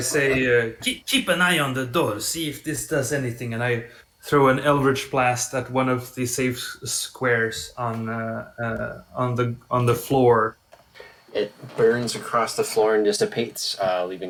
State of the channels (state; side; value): identical; both; correlation 1.00